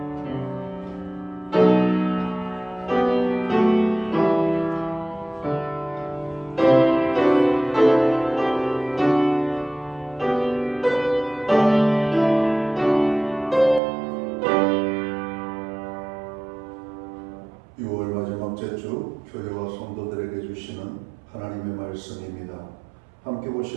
6월 마지막째 주 교회와 성도들에게 주시는 하나님의 말씀입니다. 함께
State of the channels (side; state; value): left; drops out; at 13.8 s